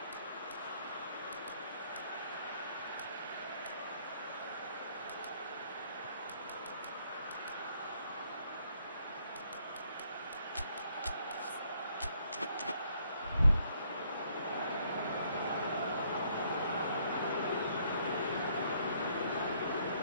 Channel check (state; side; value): inverted; both; correlation -0.68